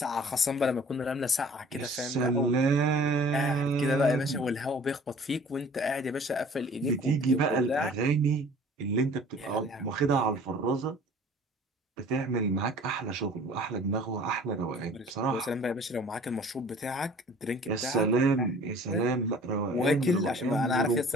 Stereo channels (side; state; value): both; normal; correlation 0.49